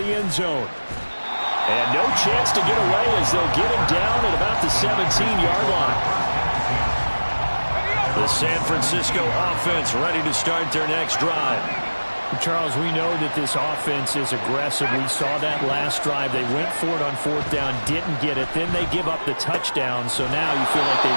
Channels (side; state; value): both; inverted; correlation -1.00